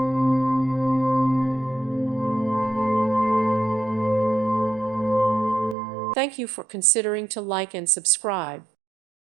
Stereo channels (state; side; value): drops out; left; at 5.8 s